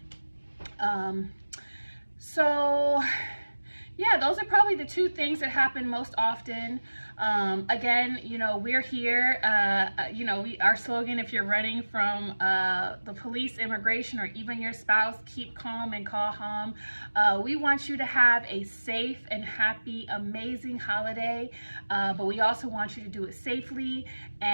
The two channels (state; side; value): inverted; both; correlation -1.00